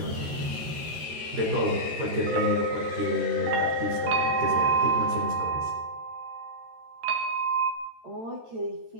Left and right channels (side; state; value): left; late; 13 ms